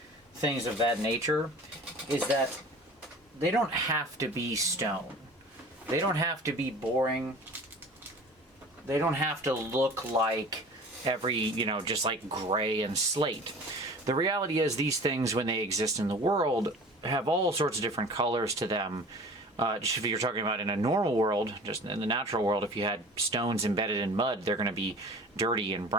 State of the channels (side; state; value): both; normal; correlation 0.42